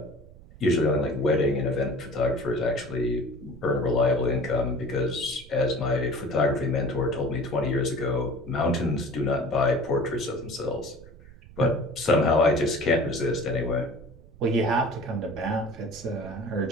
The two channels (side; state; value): right; noise; rumble, 20 dB below the sound